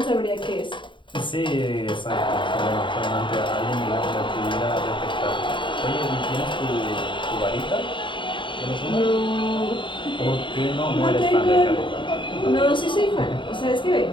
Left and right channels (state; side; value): late; right; 0.23 ms